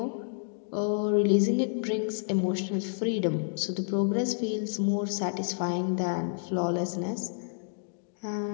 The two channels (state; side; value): silent; right; digital silence